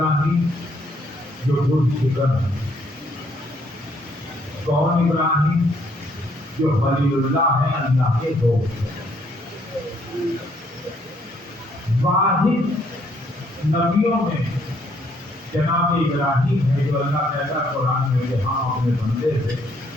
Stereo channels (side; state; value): both; normal; correlation 0.68